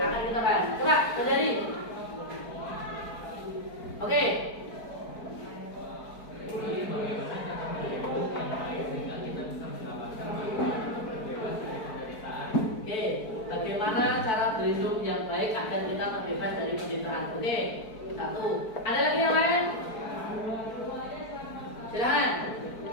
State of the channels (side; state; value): right; late; 4.5 ms